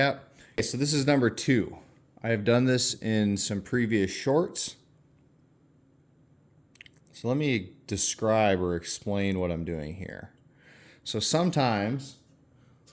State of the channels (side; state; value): both; identical; correlation 1.00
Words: Okay, so this is #2. I have done this in some previous shorts. So let me describe or explain what I'm doing here. So sometimes,